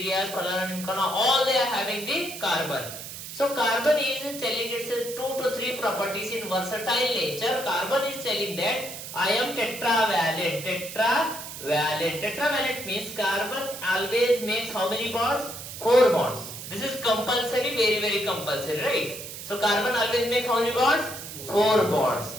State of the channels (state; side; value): noise; right; hiss, 10 dB below the sound